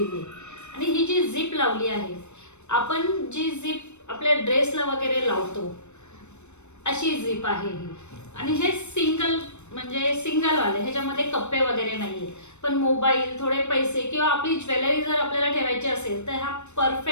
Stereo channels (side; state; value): right; late; 0.82 ms